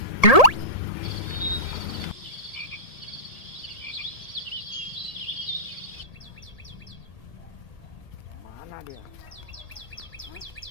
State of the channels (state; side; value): late; right; 1.8 ms